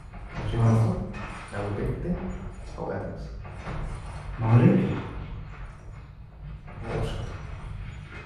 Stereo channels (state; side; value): identical; both; correlation 1.00